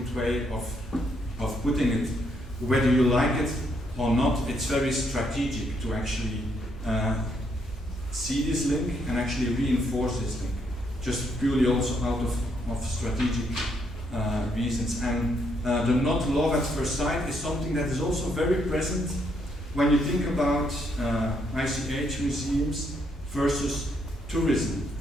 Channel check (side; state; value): both; normal; correlation 0.74